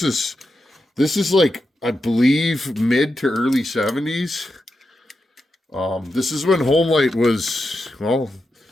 is like, I believe, mid to early 70s. This is when Homelite was, well,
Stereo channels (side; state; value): both; normal; correlation 0.88